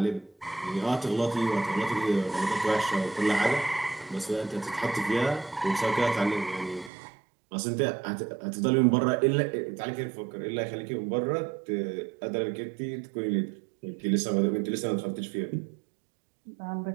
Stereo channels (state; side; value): drops out; left; at 6.9 s